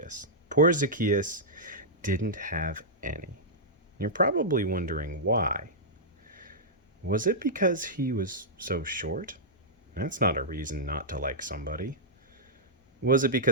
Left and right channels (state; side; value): normal; both; correlation -0.11